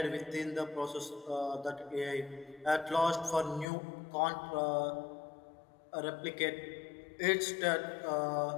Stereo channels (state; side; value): drops out; right; at 3.7 s